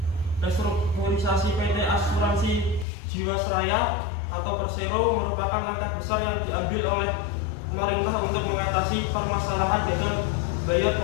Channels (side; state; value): right; drops out; at 2.9 s